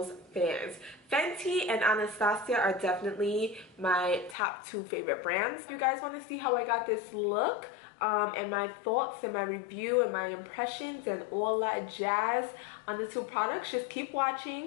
fan. Fenty and Anastasia are definitely my top two favorite brands. If you guys want to see how I got this look, and my thoughts and my review and my impressions and all that jazz on the two products, just keep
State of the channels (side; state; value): right; drops out; at 4.4 s